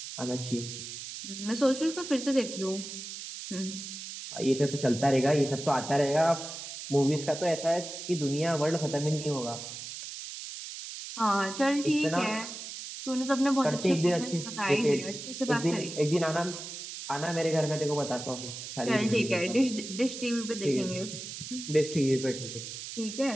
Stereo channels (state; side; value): noise; right; hiss, 9 dB below the sound